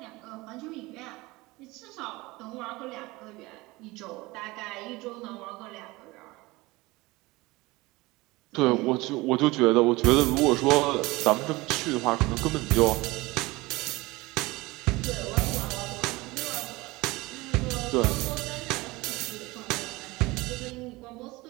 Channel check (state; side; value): quieter; left; 21.7 dB